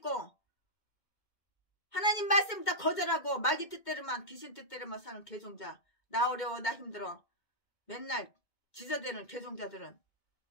하나님 말씀 다 거절하고 마귀 뜻대로만, 귀신 뜻대로만 사는 개종자, 나 어려워 나 힘들어 맨날 지저대는 개종자들은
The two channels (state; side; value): late; right; 2.1 ms